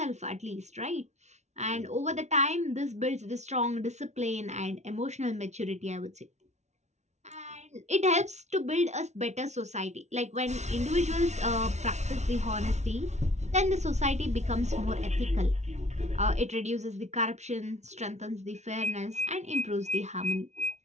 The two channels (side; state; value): left; late; 0.32 ms